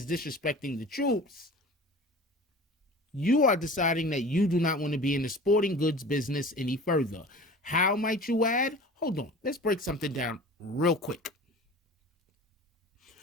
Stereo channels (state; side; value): normal; both; correlation 0.40